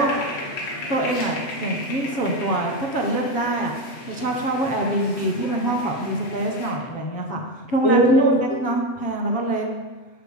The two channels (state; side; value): late; right; 7.8 ms